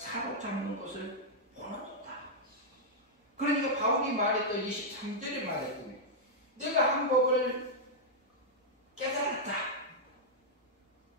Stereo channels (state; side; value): normal; both; correlation -0.06